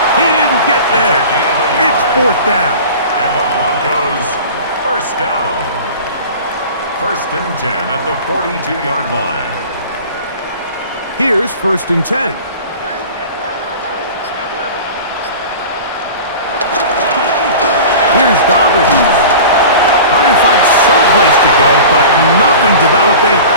He didn't get there. It's 4th down. And the Broncos first down. 1st and 10 at the 42-yard line. Here's 1st and 10. Here's Dobbins. Trying to find some place to go, but nothing developing.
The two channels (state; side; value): inverted; both; correlation -0.37